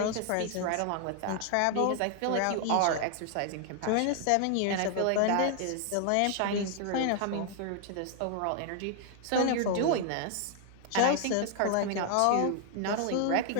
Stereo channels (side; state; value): both; different; correlation 0.00